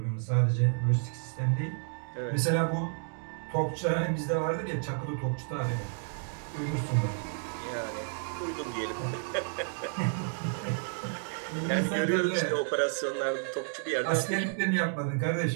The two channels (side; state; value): left; silent; 57 dB below the other